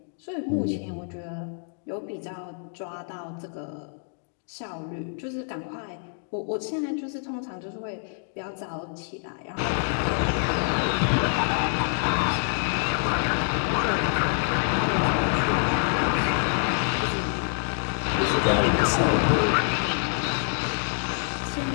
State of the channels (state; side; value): silent; right; 61 dB below the other